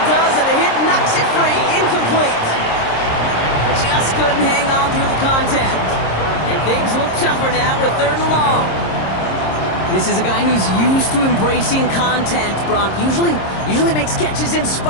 does, and the hit knocks it free. Incomplete. Just couldn't hang on through the contact. And things look tougher now with 3rd and long. This is a guy who's used to embracing contact, Brock. Usually makes catches in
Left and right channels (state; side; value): late; right; 26 ms